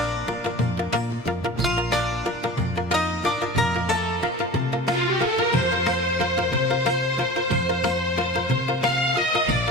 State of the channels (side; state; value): both; normal; correlation 0.38